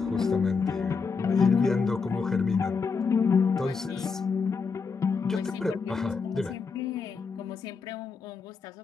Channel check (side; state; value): right; quieter; 5.1 dB